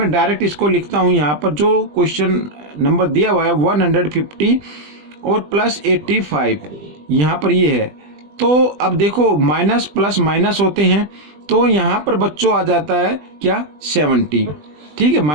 डायरेक्ट इसको लिखता हूँ। यहाँ पर जो क्वेश्चन नंबर दिया हुआ है 150 और +85, यहाँ पर ये है। तो अब देखो माइनस प्लस माइनस होते हैं, तो यहाँ पर बच्चों आ जाता है क्या 70। ठीक है,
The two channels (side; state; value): left; late; 20 ms